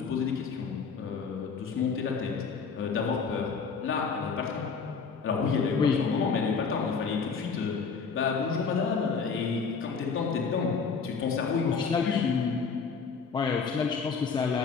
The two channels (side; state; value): right; quieter; 5.4 dB